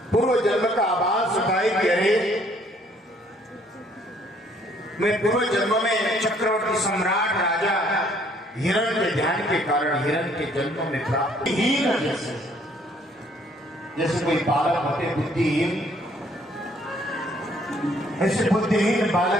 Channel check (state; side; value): normal; both; correlation 0.63